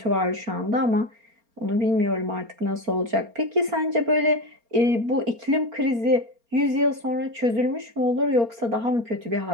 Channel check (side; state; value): left; late; 4.3 ms